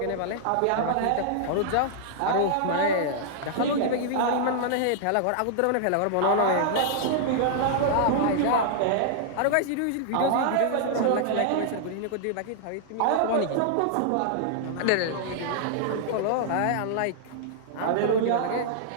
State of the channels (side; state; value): both; different; correlation -0.01